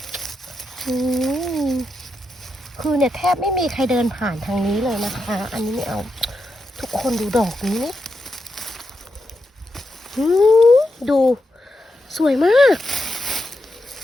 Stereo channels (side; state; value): both; normal; correlation 0.85